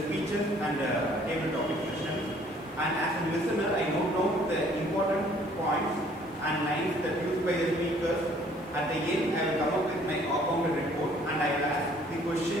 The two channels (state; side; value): noise; left; hiss, 29 dB below the sound